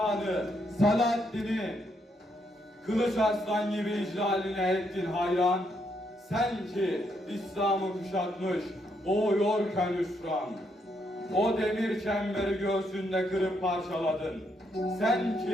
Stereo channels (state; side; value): normal; both; correlation 0.76